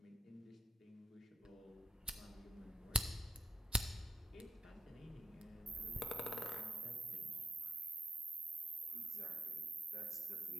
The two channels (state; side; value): normal; both; correlation 0.85